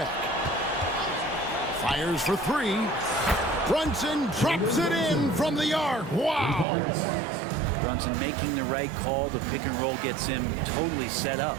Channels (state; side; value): drops out; left; at 6.7 s